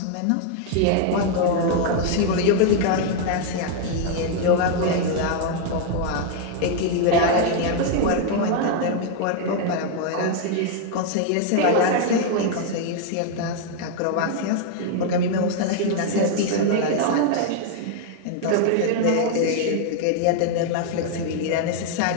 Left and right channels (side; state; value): both; different; correlation 0.00